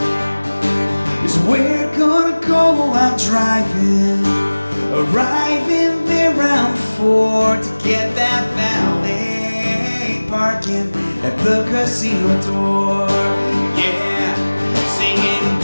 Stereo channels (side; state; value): both; inverted; correlation -1.00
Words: is where we're gonna go out driving, arriving there around 4 to get that valet parking at the casino door. Yeah, singing,